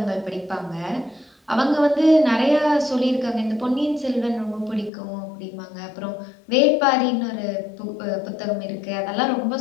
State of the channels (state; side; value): drops out; right; at 4.9 s